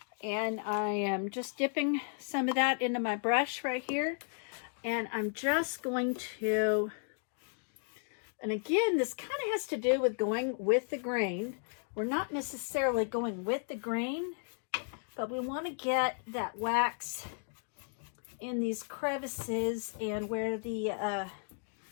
And I am just dipping some of that into my brush right here. And I'm just going to, and again, this kind of has to do with going with the grain. We're not necessarily going with the grain, but we want to get that wax in these crevices and where the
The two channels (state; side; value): silent; right; 55 dB below the other